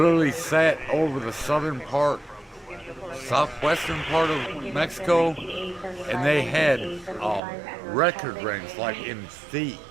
sat over the southwestern part of Mexico, and they had record rains like in feet.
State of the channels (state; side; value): drops out; left; at 7.4 s